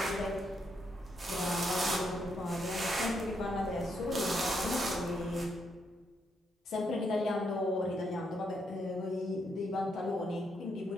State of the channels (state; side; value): normal; both; correlation 0.77